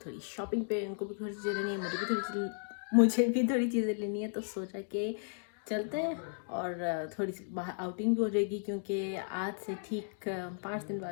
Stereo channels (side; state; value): right; silent; digital silence